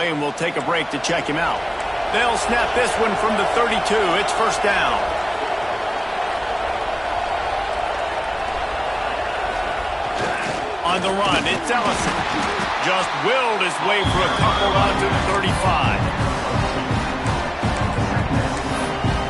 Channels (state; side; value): identical; both; correlation 1.00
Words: and we'll take a break to check him out. They'll snap this one from the 32. It's first down. On the run, it's Ellison. Just willed his way for a couple out to the 35.